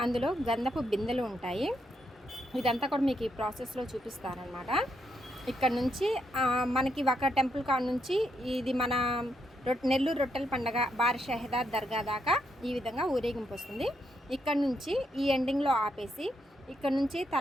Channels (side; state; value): both; normal; correlation 0.79